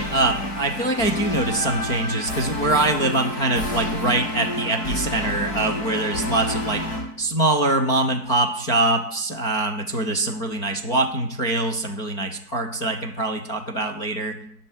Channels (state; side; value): late; right; 4.6 ms